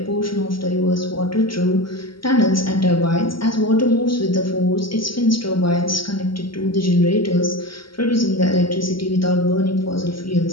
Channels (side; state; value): right; late; 0.74 ms